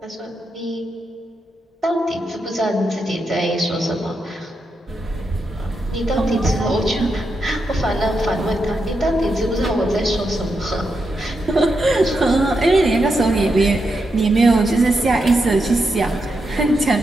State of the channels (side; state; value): both; normal; correlation 0.84